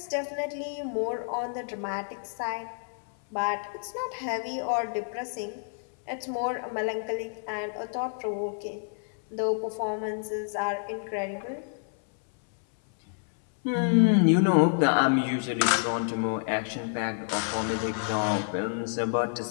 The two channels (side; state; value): right; silent; 59 dB below the other